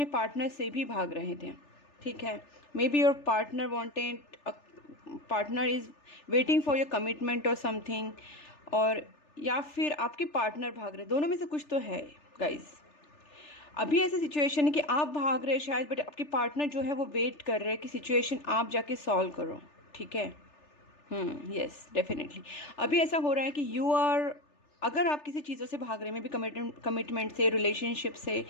पार्टनर से भी भाग रहे थे। ठीक है, may be your partner wanted, partner is waiting for your commitment और समथिंग, और या फिर आपके पार्टनर भाग रहे, दोनों में से कुछ तो है गाइज। अभी ऐसी सिचुएशन है कि आप भाग रहे शायद, बट आपके पार्टनर जो है वो वेट कर रहे हैं कि सिचुएशन आप जाके सॉल्व करो। ठीक है, यस डेफिनेटली अभी ऐसा हो रहा है कि यू आर, अगर आप किसी चीज़ों से भाग रहे हैं, मे बी कमिटमेंट से, रिलेशनशिप से,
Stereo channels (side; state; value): right; late; 3.4 ms